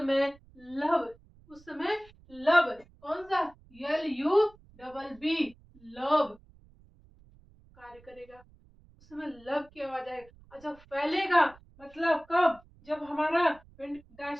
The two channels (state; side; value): noise; right; rumble, 26 dB below the sound